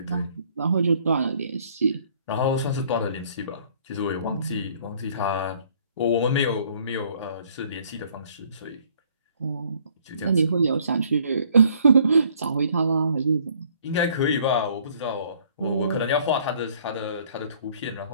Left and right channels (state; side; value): inverted; both; correlation -0.60